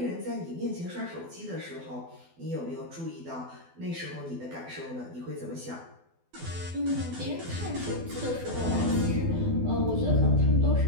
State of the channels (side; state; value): left; late; 12 ms